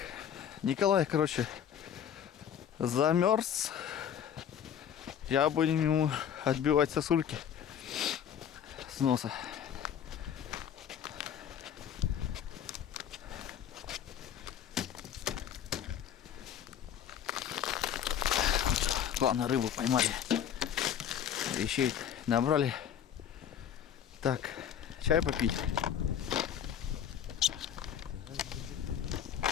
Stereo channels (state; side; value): quieter; right; 9.1 dB